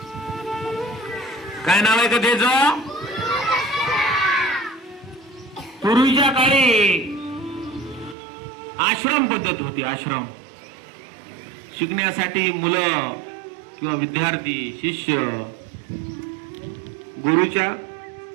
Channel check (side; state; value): left; drops out; at 8.2 s